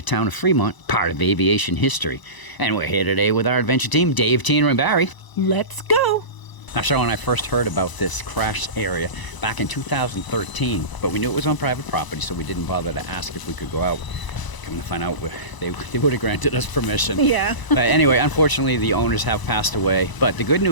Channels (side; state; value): right; late; 1.0 ms